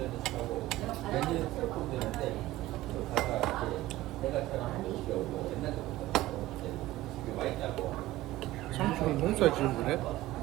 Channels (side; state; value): left; quieter; 16.4 dB